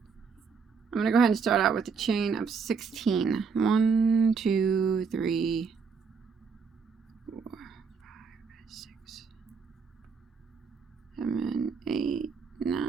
going to go ahead and start out with a chain of 16. 1, 2, 3, 4, 5, 6, 7, 8,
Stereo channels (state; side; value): quieter; left; 5.6 dB